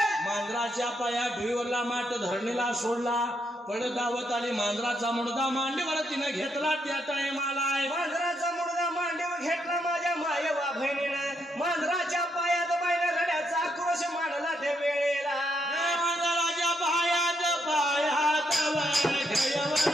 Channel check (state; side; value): normal; both; correlation 0.77